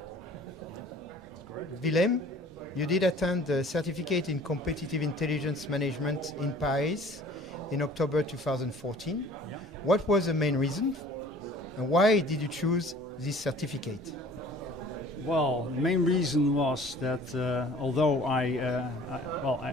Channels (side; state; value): both; normal; correlation 0.50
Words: Willem, you did attend the certificate in competitive intelligence management in Paris in October 2014. Yeah. What was the main reason and why did you choose this certificate? Well, the main reason was that although